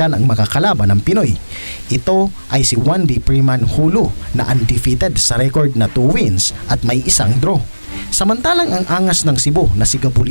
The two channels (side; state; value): both; inverted; correlation -1.00